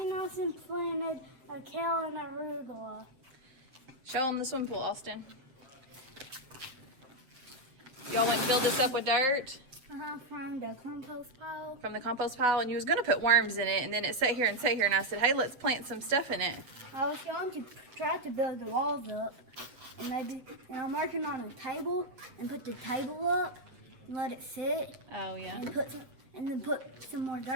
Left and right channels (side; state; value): left; late; 7.9 ms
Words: Austin planted a kale and arugula. Show them the swim pool, Austin. Y'all went and filled this up with dirt From the compost pile. from the compost pile, and you was going to put worms in it, and then it sat here, and I said, hey, let's plant some stuff in it. I was going to try to build the walls up, and I'm working on a table, and put the table up, and let it sit, Oh, yeah. and then put some more